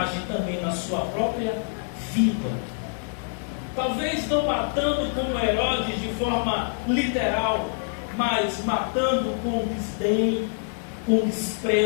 também na sua própria vida? Talvez não matando como Herodes de forma literal, mas matando com desdém, com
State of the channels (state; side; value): silent; right; 61 dB below the other